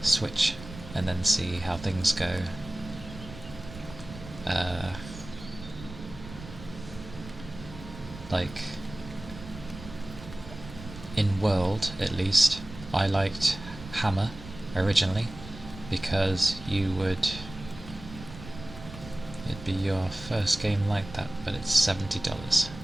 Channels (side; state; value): right; noise; rumble, 14 dB below the sound